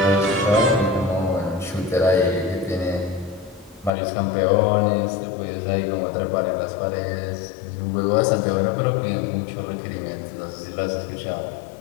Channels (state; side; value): drops out; right; at 3.9 s